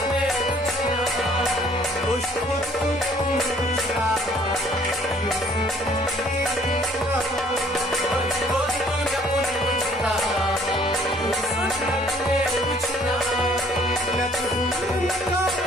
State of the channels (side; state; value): both; normal; correlation 0.59